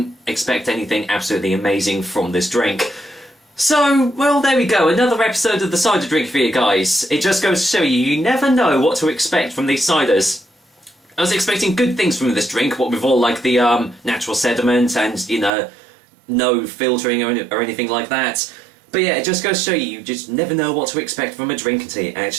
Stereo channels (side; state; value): left; drops out; at 15.5 s